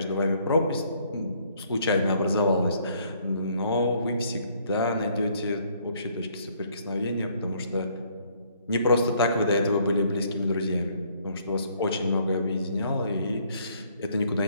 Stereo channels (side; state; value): both; inverted; correlation -0.64